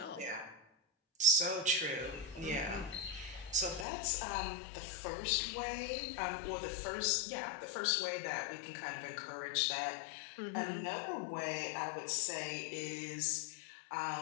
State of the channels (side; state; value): right; drops out; at 3.9 s